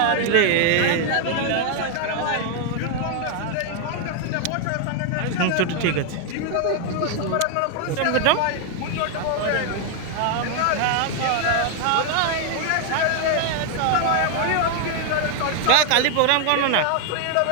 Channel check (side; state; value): both; different; correlation 0.00